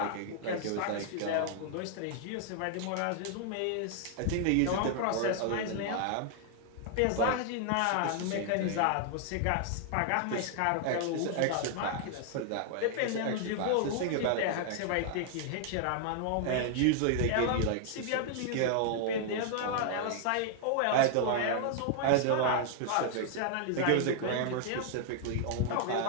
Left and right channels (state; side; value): different; both; correlation 0.00